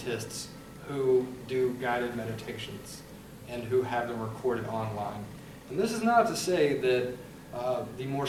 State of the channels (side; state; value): both; identical; correlation 1.00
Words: who do guided meditations and who have them recorded online. And this is not to say that the more